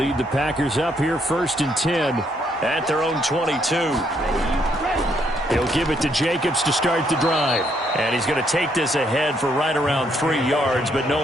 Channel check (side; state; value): both; normal; correlation 0.72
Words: the Packers up here 1st and 10 at their own 22. He'll give it to Jacobs to start the drive. And he's going to take this ahead for right around 3 yards, but